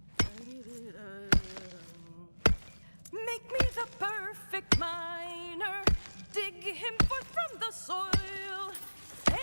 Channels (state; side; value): inverted; both; correlation -1.00